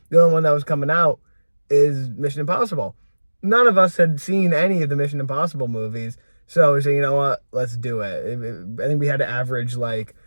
the only one that was coming out is Mission Impossible. None of us had seen any of the Mission Impossible movies. So we said, you know what, let's do it. I think we had to average like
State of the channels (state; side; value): inverted; both; correlation -1.00